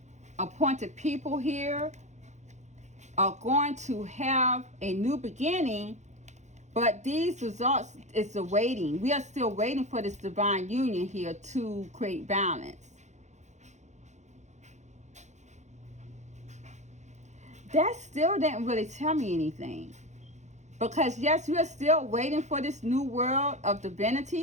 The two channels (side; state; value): left; late; 0.34 ms